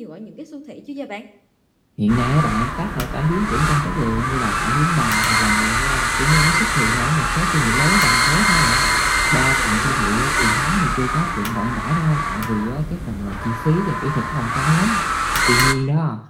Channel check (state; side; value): identical; both; correlation 1.00